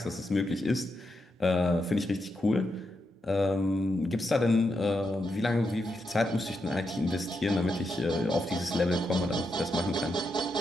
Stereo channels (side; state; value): both; normal; correlation 0.84